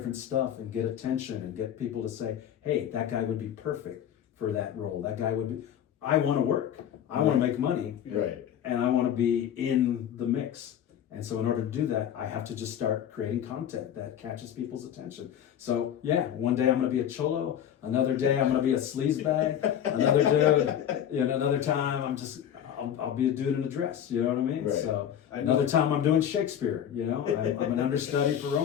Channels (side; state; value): right; quieter; 9.7 dB